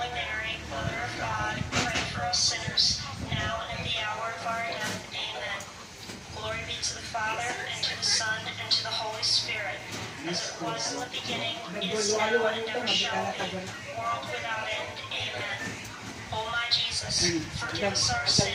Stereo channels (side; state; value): both; identical; correlation 1.00